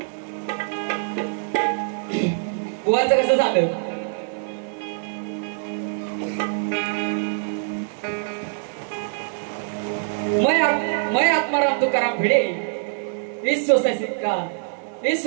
बुवाचं कसं झालं. मैं आत्माराम तुकाराम भिडे इस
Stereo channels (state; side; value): silent; left; digital silence